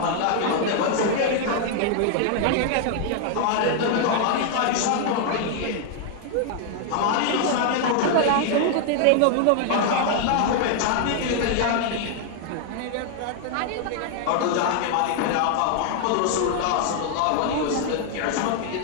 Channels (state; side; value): different; both; correlation 0.00